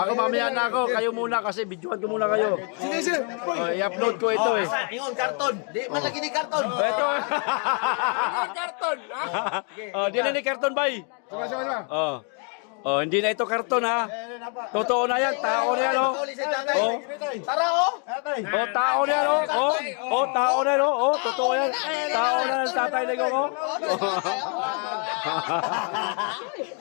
mamaya na ako, kayo muna kasi videoan ko muna kayo. I-upload ko ito, eh. Ingon, karton. Di man lagi ni karton. Ito. Karton. Di na ni karton, bay. Hindi na ito karton, ha. Totoo na yan, tao na yan, oh. Tara, oh. Tao na yan, oh. Tao na yan, oh. Totoo yan. Tao na yan, Tatay Digong, oh.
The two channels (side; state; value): right; quieter; 39.6 dB